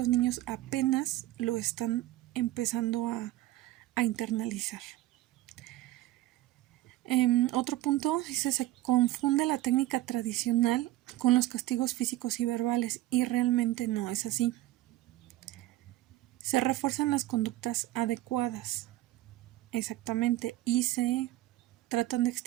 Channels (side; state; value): left; quieter; 15.9 dB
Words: niños apenas lo están empezando a internalizar. Otro punto dice se confunde la técnica tradicional con los castigos físicos y verbales y realmente no es así. Se refuerzan las conductas adecuadas, exactamente, y se tratan de